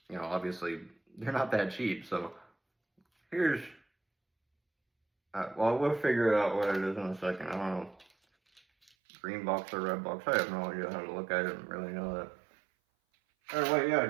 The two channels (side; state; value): left; drops out; at 8.9 s